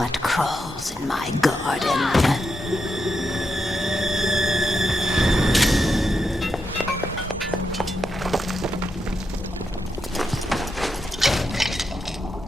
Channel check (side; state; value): both; normal; correlation 0.84